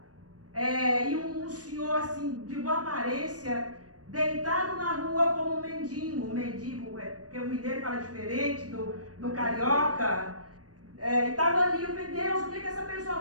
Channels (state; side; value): late; left; 0.67 ms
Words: e um senhor assim, de boa aparência, deitado na rua como um mendigo. Porque o mineiro fala diferente do carioca. Estava ali, eu falei, Deus, o que essa pessoa